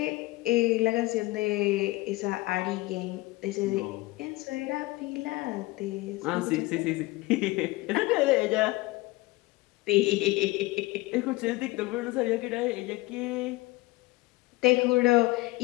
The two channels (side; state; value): right; quieter; 20.9 dB